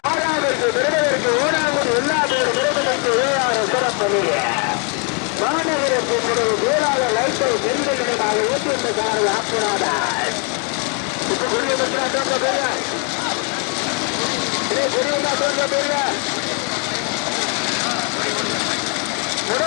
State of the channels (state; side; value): quieter; right; 38.9 dB